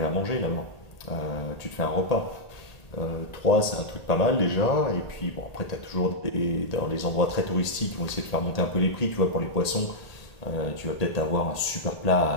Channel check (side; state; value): right; late; 1.8 ms